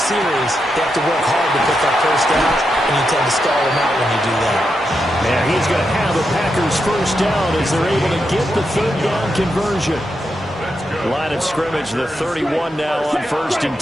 they have to work hard to put that first down, and you tend to stall them out when you do that. And he's going to have a Packers first down as they're able to get the third down conversion. Line of scrimmage, the 31 now on 1st and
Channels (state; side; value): normal; both; correlation 0.85